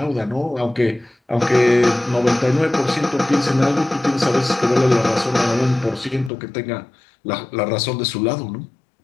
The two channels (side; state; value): right; drops out; at 6.3 s